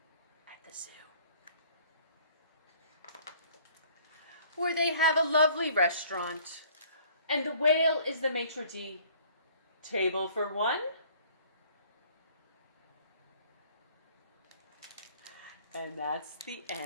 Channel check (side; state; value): both; inverted; correlation -0.55